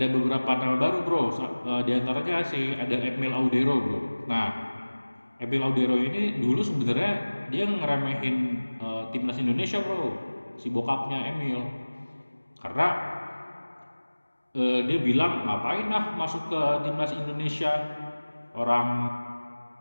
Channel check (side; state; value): both; inverted; correlation -1.00